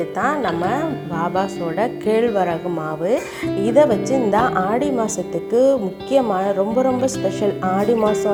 தான் நம்ம பாபாஸோட கேழ்வரகு மாவு. இதை வச்சு இந்த ஆடி மாதத்துக்கு முக்கியமான ரொம்ப ஸ்பெஷல். ஆடி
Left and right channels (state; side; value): identical; both; correlation 1.00